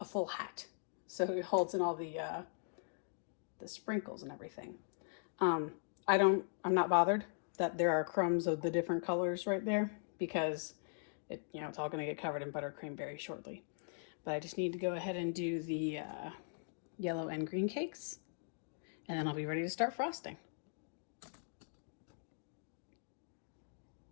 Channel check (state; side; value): silent; right; digital silence